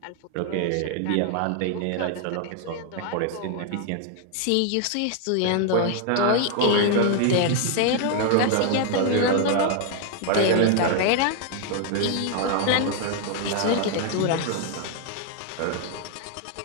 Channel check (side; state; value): both; different; correlation 0.00